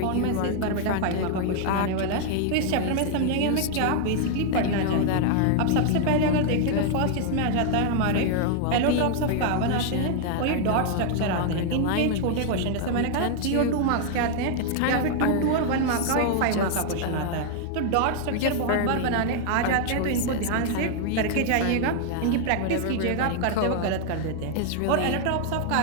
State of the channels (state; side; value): different; both; correlation 0.00